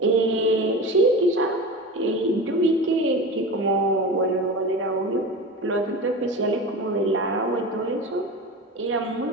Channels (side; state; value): both; normal; correlation 0.29